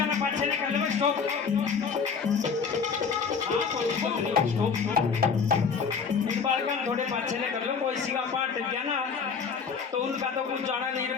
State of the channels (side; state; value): right; quieter; 5.8 dB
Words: ने पाछे ने कर लो स्टॉप हाँ कोई स्टॉप आसन थोड़े पाछे ले कर लो, कोई सी का पाट गया ना तो उनका तो कुछ जाना नहीं,